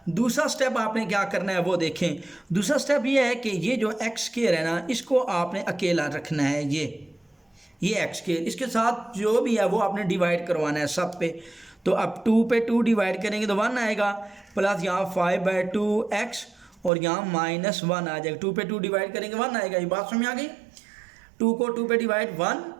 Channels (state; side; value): drops out; left; at 16.9 s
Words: दूसरा स्टेप आपने क्या करना है वो देखें। दूसरा स्टेप ये है कि ये जो x स्क्वायर है ना, इसको आपने अकेला रखना है। ये x स्क्वायर, इसके साथ जो भी है वो आपने डिवाइड करवाना है सब पे। तो अब 2 पे 2 डिवाइड करेंगे तो 1 आएगा, प्लस यहाँ 5/2x और यहाँ -1 आ जाएगा। 2 पे 2 डिवाइड करेंगे 1 आएगा। ये बात समझ आ गई? 2 को 2 पे डिवाइड 1,